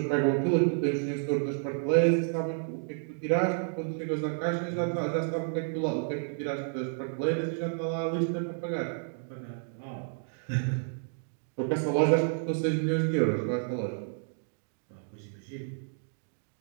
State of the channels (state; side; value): silent; left; digital silence